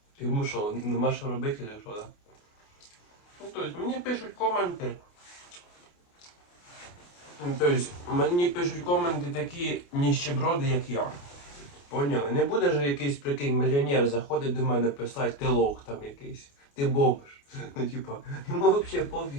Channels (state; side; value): late; right; 28 ms